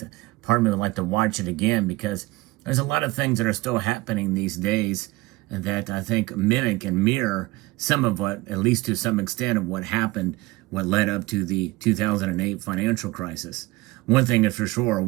part of me would like to watch it again because there's a lot of things that are still happening these days that I think mimic and mirror some of what, at least to some extent, of what happened, what led up to the 2008 financial crisis. One thing is for sure,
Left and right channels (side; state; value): left; quieter; 20.8 dB